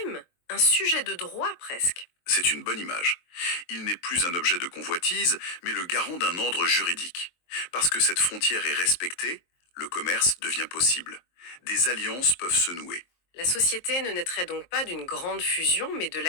un sujet de droit presque. C'est une bonne image. Il n'est plus un objet de convoitise, mais le garant d'un ordre juridique. Parce que cette frontière est respectée, le commerce devient possible. Des alliances peuvent se nouer. La société ne naîtrait donc pas d'une grande fusion, mais de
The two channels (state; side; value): late; right; 23 ms